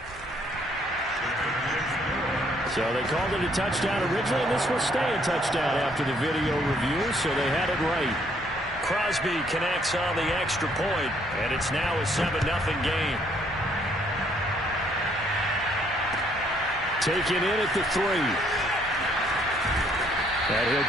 So they called it a touchdown originally, and this will stay a touchdown after the video review, so they had it right. Crosby connects on the extra point, and it's now a 7-0 game. Taken in at the 3. And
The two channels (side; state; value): both; normal; correlation 0.66